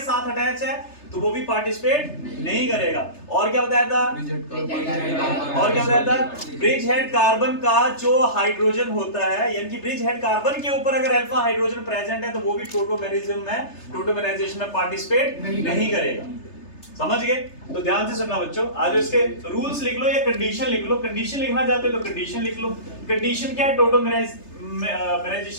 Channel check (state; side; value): late; right; 3.3 ms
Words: साथ अटैच है तो वो भी पार्टिसिपेट नहीं करेगा। और क्या बताया था? ब्रिज हेड कार्बन का जो हाइड्रोजन होता है, यानी कि ब्रिज हेड कार्बन के ऊपर अगर अल्फा हाइड्रोजन प्रेजेंट है तो वो भी टोटोमेरिज्म में, टोटोमेराइजेशन में पार्टिसिपेट नहीं करेगा। समझ गए? तो ध्यान से सुनना बच्चों, आज इसके रूल्स लिख लो या कंडीशन लिख लो। कंडीशन लिखना चाहते हो तो कंडीशन लिख लो। कंडीशन क्या है